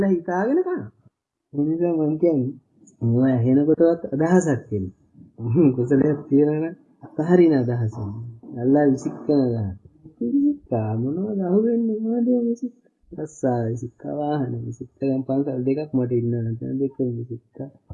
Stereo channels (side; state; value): both; identical; correlation 1.00